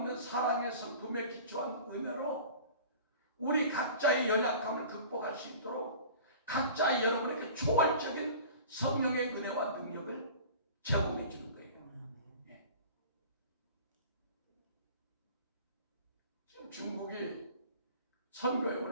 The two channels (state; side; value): inverted; both; correlation -0.41